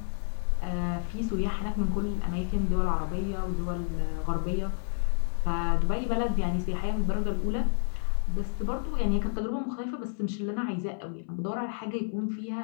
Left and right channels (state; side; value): silent; right; 56 dB below the other